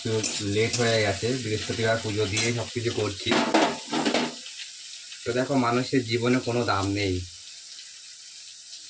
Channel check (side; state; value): both; identical; correlation 1.00